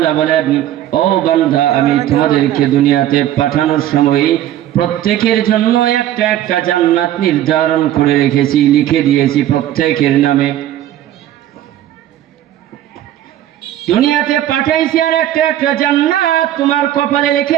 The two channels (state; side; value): quieter; left; 12.4 dB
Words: বলেন, ও বান্দা, আমি তোমাদেরকে দুনিয়াতে পাঠানোর সময় প্রত্যেকের জন্য একটা একটা জান্নাত নির্ধারণ করে রেখেছি, লিখে দিয়েছি প্রত্যেকের নামে। দুনিয়াতে পাঠাইছি আর একটা একটা জান্নাত তোমার কপালে